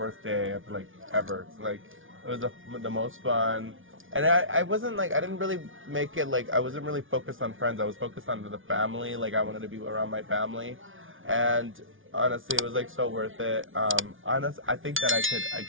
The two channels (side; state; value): left; late; 0.57 ms